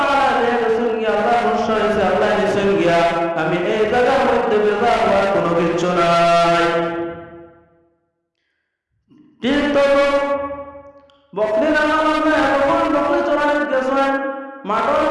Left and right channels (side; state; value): both; identical; correlation 1.00